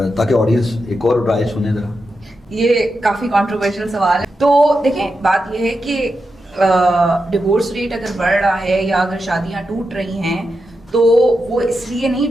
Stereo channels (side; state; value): both; normal; correlation 0.88